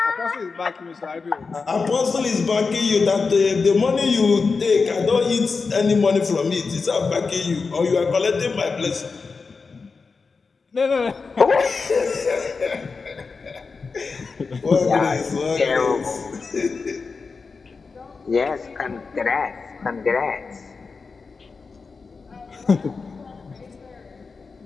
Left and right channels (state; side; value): quieter; right; 4.6 dB